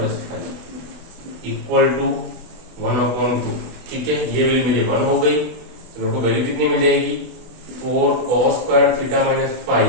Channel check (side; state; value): left; late; 24 ms